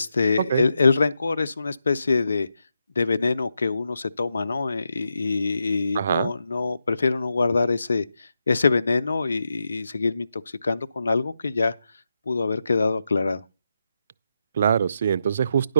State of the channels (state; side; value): inverted; both; correlation -0.85